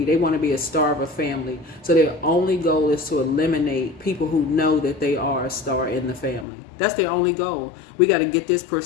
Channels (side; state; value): right; drops out; at 6.5 s